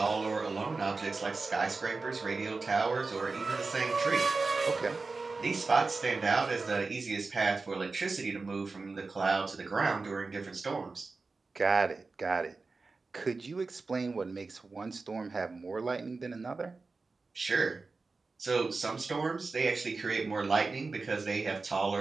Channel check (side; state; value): left; quieter; 4.0 dB